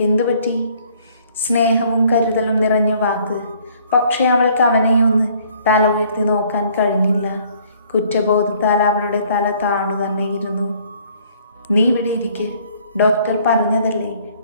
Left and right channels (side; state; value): both; inverted; correlation -0.59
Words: എന്തു പറ്റി? സ്നേഹവും കരുതലും നിറഞ്ഞ വാക്ക്. പക്ഷെ അവൾക്ക് അവനെ ഒന്ന് തല ഉയർത്തി നോക്കാൻ കഴിഞ്ഞില്ല. കുറ്റബോധത്താൽ അവളുടെ തല താണു തന്നെ ഇരുന്നു. നീ ഇവിടെ ഇരിക്ക്, ഡോക്ടർ പറഞ്ഞതല്ലേ